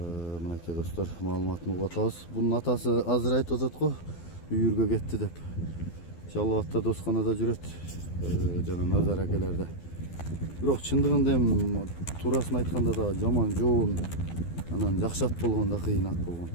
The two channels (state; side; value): late; right; 12 ms